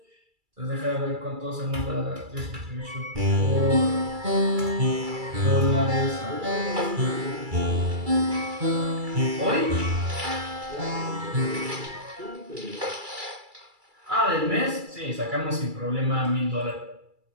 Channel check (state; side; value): late; left; 2.3 ms